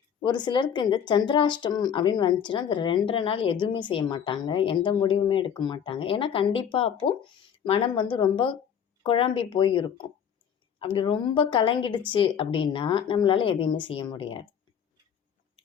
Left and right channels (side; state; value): right; quieter; 8.1 dB